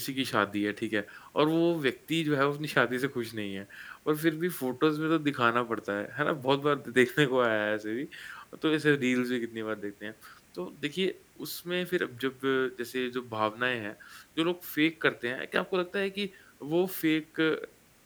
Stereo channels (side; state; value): both; identical; correlation 1.00